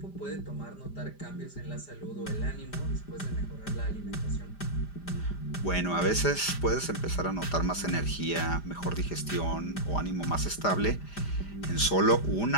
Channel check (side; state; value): right; late; 5.0 ms